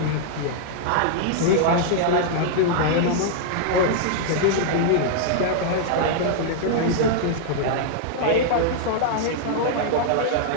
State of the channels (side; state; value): both; different; correlation -0.01